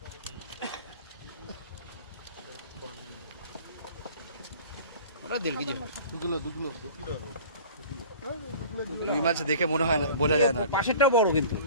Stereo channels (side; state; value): both; inverted; correlation -0.43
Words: ওটা 1.5 কেজি হবে। রুই মাছ দেখে মনে হয় না, বোঝা যায় না। পাশেরটাও বড় কিন্তু।